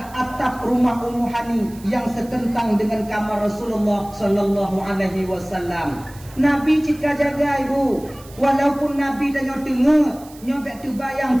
atap rumah Ummu Hani yang setentang dengan kamar Rasulullah sallallahu alaihi wasallam. Nabi cika jaga ibu. Walaupun Nabi tanya tengok, nyobek tu bayang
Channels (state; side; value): noise; right; hiss, 22 dB below the sound